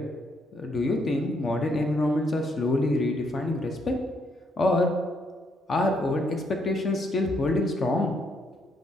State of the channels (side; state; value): both; normal; correlation 0.73